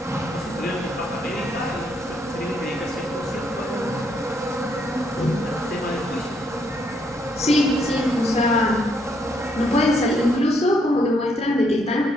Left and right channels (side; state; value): both; normal; correlation 0.72